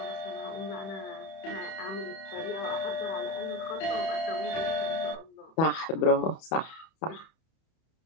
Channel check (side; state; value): right; late; 31 ms